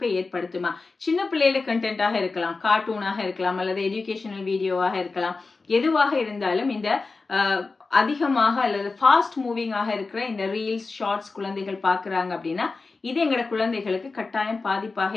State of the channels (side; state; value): right; quieter; 4.0 dB